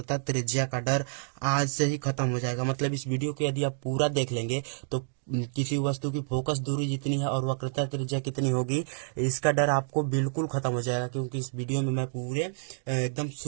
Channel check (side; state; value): left; silent; digital silence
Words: त्रिज्या का डर आज से ही खत्म हो जाएगा। मतलब इस वीडियो को यदि आप पूरा देख लेंगे तो किसी वस्तु की फोकस दूरी जितनी है और वक्रता त्रिज्या कितनी होगी, इसका डर आपको बिल्कुल खत्म हो जाएगा। क्योंकि इस वीडियो में मैं पूरे एकदम